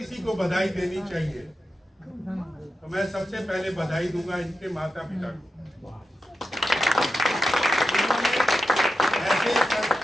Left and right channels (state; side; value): normal; both; correlation 0.90